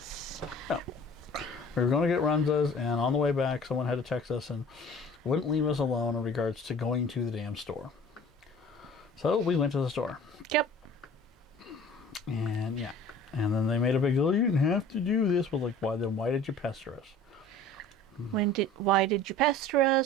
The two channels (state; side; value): normal; both; correlation 0.46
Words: Yeah. We were going to get runzas, and on the way back, someone had to text us and wouldn't leave us alone in regards to going to the damn store. So we went to the store. Yep. And yeah. And then they made a big deal. You didn't have to do this. Well, like, why did you pester us? Why did you pester